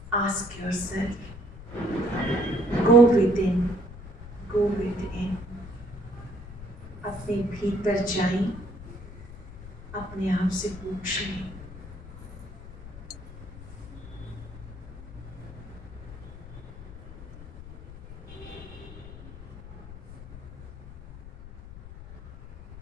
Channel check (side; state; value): left; noise; rumble, 14 dB below the sound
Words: Ask yourself, go with in, go with in, अपने भीतर जाएं, अपने आप से पूछें।